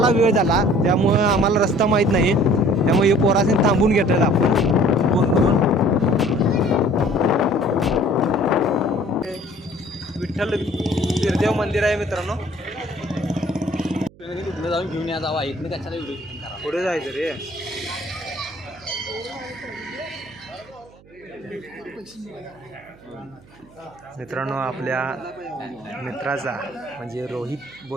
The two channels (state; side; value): noise; right; hum, 25 dB below the sound